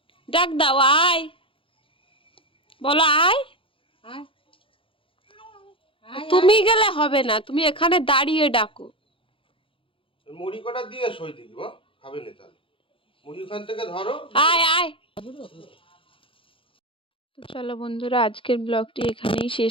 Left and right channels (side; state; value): right; late; 0.25 ms